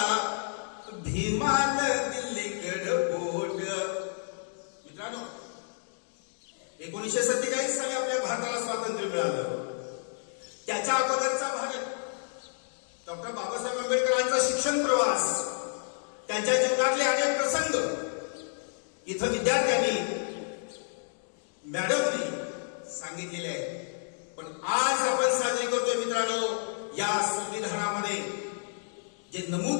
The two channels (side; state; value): right; silent; 58 dB below the other